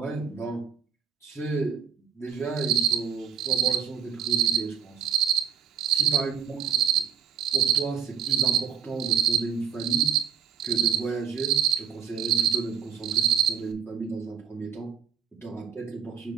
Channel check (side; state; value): left; quieter; 8.0 dB